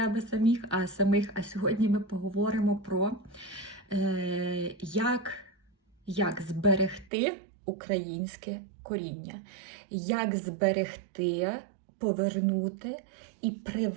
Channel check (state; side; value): drops out; left; at 7.1 s